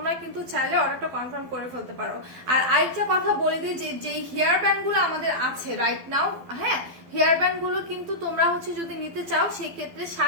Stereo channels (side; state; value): left; late; 12 ms